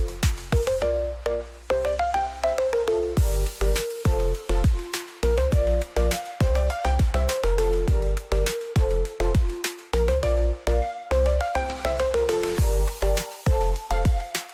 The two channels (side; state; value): both; identical; correlation 1.00